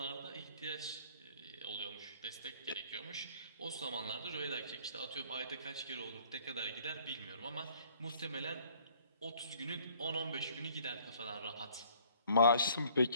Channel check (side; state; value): both; inverted; correlation -0.57